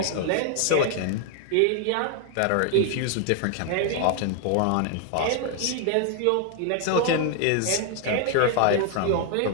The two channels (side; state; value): both; different; correlation 0.00